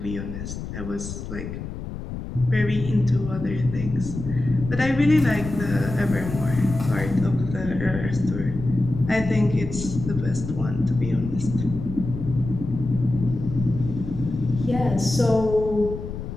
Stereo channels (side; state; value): left; noise; rumble, 8 dB below the sound